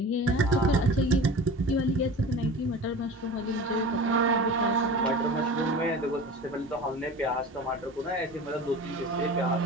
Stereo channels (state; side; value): normal; both; correlation 0.35